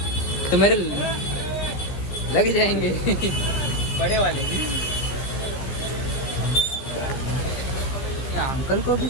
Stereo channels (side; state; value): right; late; 15 ms